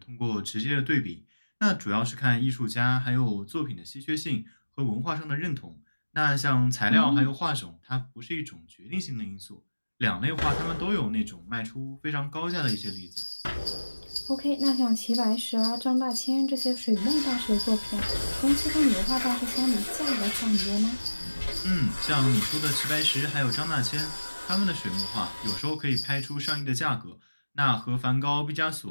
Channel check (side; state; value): both; inverted; correlation -1.00